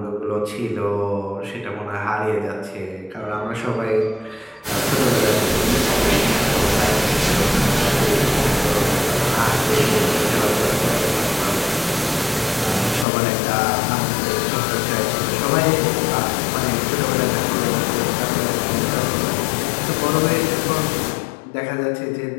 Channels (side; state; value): right; drops out; at 13.1 s